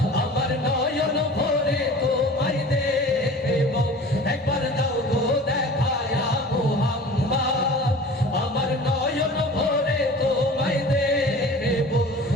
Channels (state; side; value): normal; both; correlation 0.41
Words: আমার নয়ন ভরে তোমায় দেখব, একবার দাও গো দেখায়া মোহাম্মদ আমার নয়ন ভরে তোমায় দেখব,